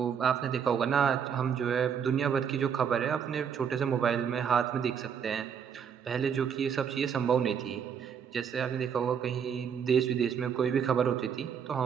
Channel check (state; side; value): quieter; left; 7.5 dB